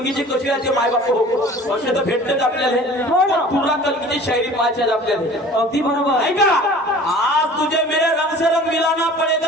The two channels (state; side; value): normal; both; correlation 0.45